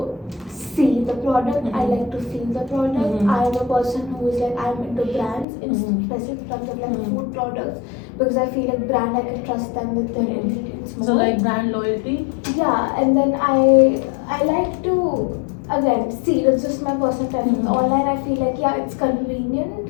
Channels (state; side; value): drops out; right; at 5.5 s